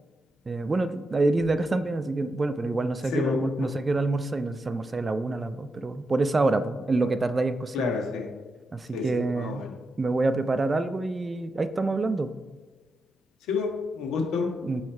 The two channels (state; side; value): normal; both; correlation 0.86